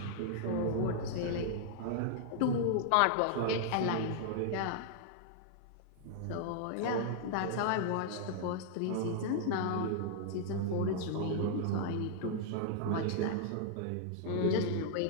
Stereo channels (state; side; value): different; both; correlation -0.01